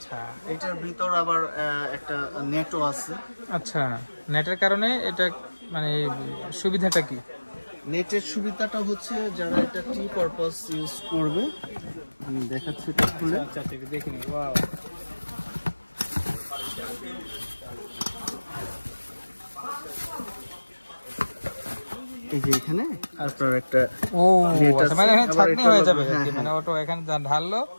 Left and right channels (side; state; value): both; inverted; correlation -1.00